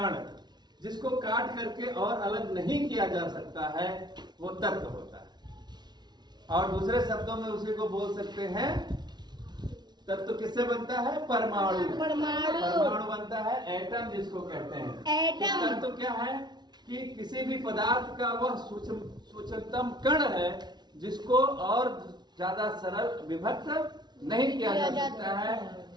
जिसको काट करके और अलग नहीं किया जा सकता है, वो तत्व होता है। और दूसरे शब्दों में उसी को बोल सकते हैं, तत्व किससे बनता है? परमाणु बनता है, एटम जिसको कहते हैं। तो तत्व क्या है कि किसी भी पदार्थ का वह सूक्ष्मतम कण है जिसको और ज्यादा सरल विभक्त नहीं किया जा सकता है,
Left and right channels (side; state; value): left; late; 0.20 ms